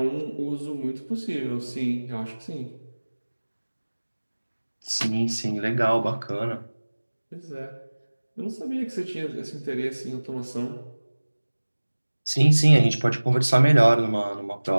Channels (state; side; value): inverted; both; correlation -1.00